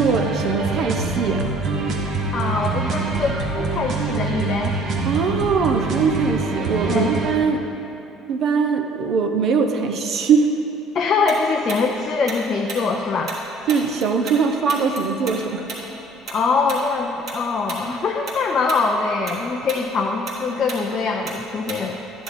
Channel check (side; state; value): both; normal; correlation 0.54